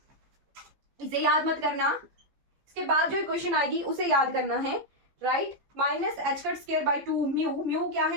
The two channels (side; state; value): left; late; 14 ms